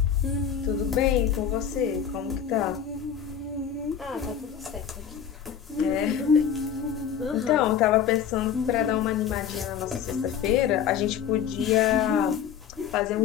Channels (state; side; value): quieter; right; 8.4 dB